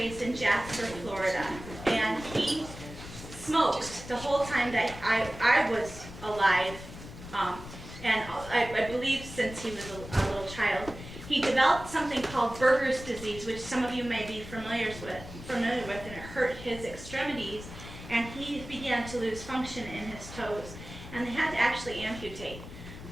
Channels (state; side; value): noise; left; rumble, 13 dB below the sound